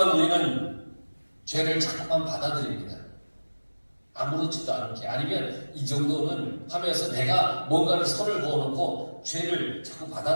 우리는 죄를 자꾸만 받아들입니다. 아무렇지도 않게, 아니면 이 정도는 하면서 내가 뭔가를 선을 그어놓고 죄를 자꾸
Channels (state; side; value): inverted; both; correlation -1.00